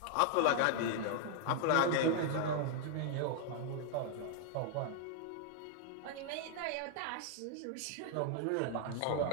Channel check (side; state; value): both; different; correlation 0.00